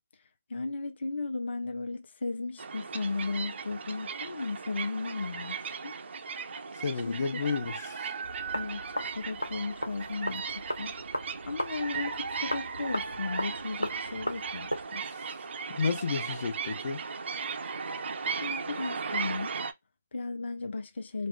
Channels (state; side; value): inverted; both; correlation -0.72